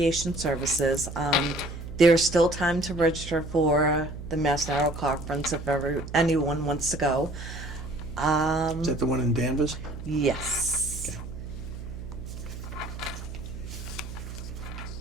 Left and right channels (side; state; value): right; noise; hum, 10 dB below the sound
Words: services. There's still time to register for the Mass Narrow Conference if anyone wants to go. Is that the one in Danvers? Yes.